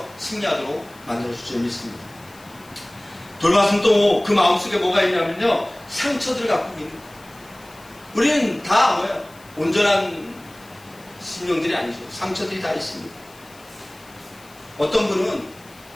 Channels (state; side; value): noise; left; hiss, 25 dB below the sound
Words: 승리하도록 만들어주실 줄 믿습니다. 돌밭은 또 그 마음속에 뭐가 있냐면요, 상처들을 갖고 있는 거예요. 우리는 다 뭐예요? 온전한 심령들이 아니죠. 상처들이 다 있습니다. 어떤 분은